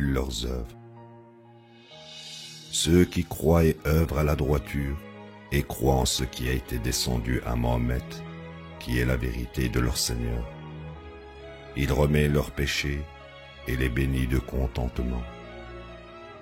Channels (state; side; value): identical; both; correlation 1.00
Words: leurs œuvres. Ceux qui croient et œuvrent à la droiture et croient en ce qui a été descendu à Mohammed, qui est la vérité de leur Seigneur. Il remet leurs péchés et les bénit de contentement.